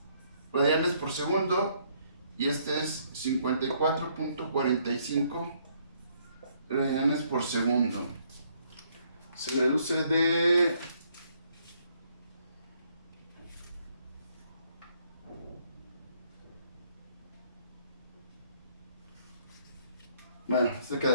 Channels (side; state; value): both; inverted; correlation -0.68